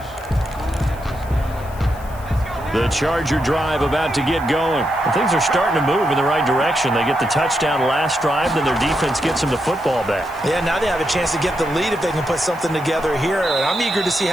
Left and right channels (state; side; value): noise; left; hiss, 22 dB below the sound